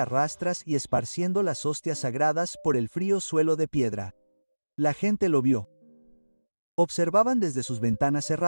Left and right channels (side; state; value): both; inverted; correlation -1.00